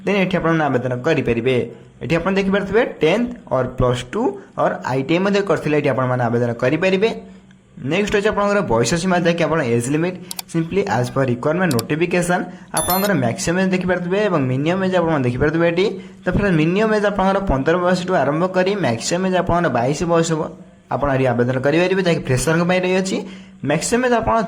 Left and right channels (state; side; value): identical; both; correlation 1.00